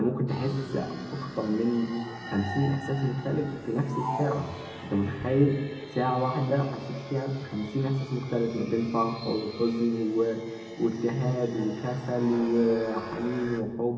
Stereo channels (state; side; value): identical; both; correlation 1.00